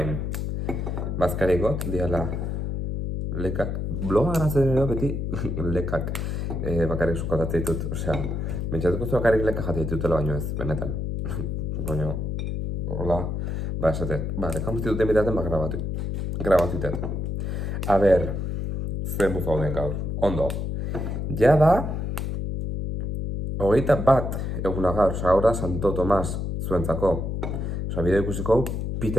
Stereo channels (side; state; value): left; noise; hum, 2 dB below the sound